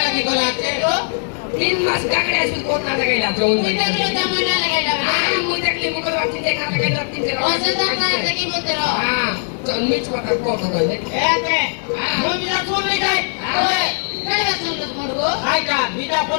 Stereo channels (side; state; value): right; silent; 66 dB below the other